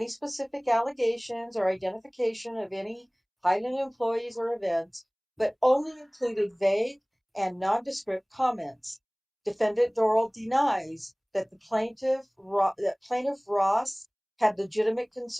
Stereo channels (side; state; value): both; identical; correlation 1.00